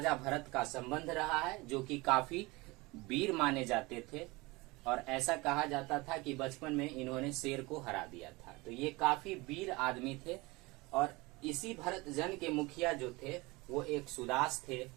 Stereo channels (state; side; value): quieter; left; 23.6 dB